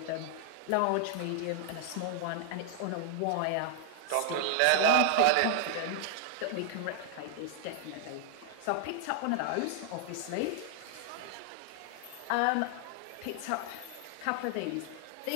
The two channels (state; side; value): different; both; correlation 0.00